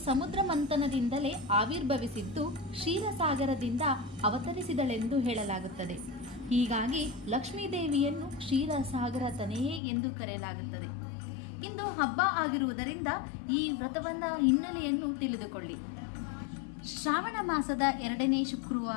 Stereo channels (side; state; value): right; drops out; at 9.8 s